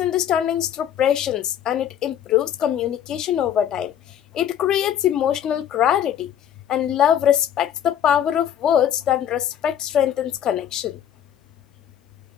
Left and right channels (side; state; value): right; quieter; 10.0 dB